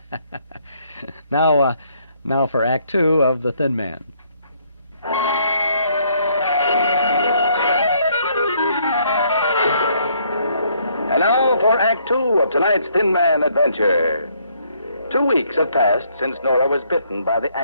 Now for Act Two of The Thin Man. And now for Act Two of tonight's Thin Man adventure. 2 weeks have passed since Nora was bitten by the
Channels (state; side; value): inverted; both; correlation -0.68